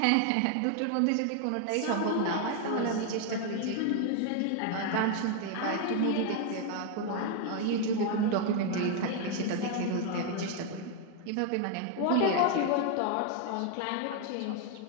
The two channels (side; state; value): both; different; correlation 0.01